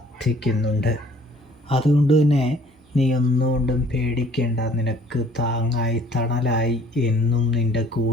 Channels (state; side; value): normal; both; correlation 0.56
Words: അതുകൊണ്ട് തന്നെ നീ ഒന്നുകൊണ്ടും പേടിക്കേണ്ട. നിനക്ക് താങ്ങായി തണലായി എന്നും നിൻ്റെ